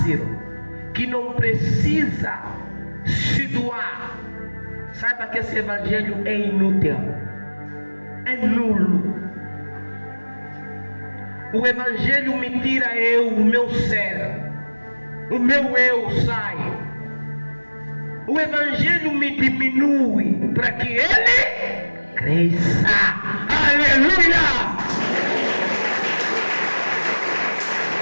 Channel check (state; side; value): inverted; both; correlation -1.00